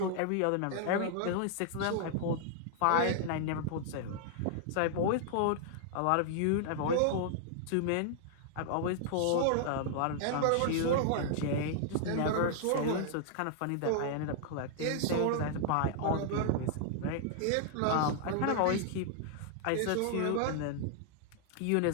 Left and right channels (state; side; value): different; both; correlation -0.01